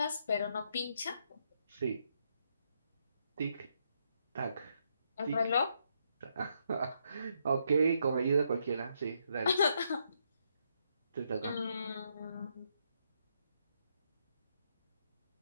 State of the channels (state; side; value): inverted; both; correlation -0.76